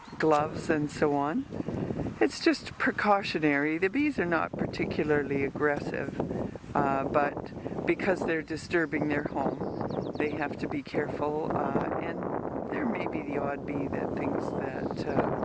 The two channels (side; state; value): both; identical; correlation 1.00